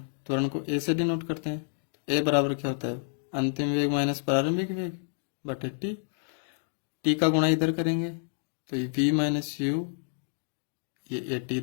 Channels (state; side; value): silent; right; digital silence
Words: त्वरण को ए से डिनोट करते हैं। ए बराबर क्या होता है? अंतिम वेग माइनस प्रारंभिक वेग बटे टी। टी का गुणा इधर करेंगे तो ये v माइनस यू, ये ए टी